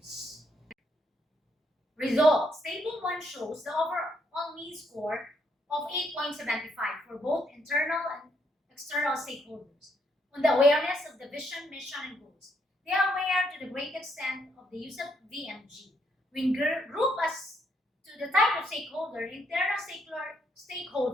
Results. Table 1 shows the overall mean score of 8.75 for both internal and external stakeholders on the awareness of the vision, mission, and goals. They are aware to the great extent of the use of VMG. We group as to the type of stakeholder, internal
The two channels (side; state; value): both; normal; correlation 0.74